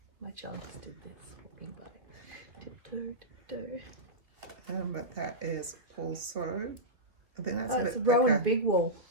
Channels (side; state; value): left; late; 2.7 ms